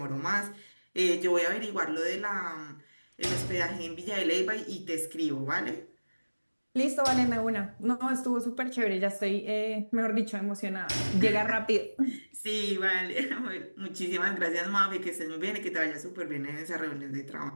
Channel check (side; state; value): both; inverted; correlation -1.00